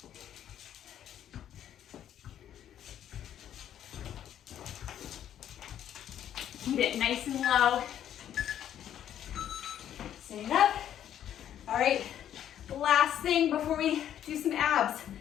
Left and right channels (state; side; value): quieter; right; 10.5 dB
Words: Keep it nice and low. Sitting up. All right, last thing before we do some abs,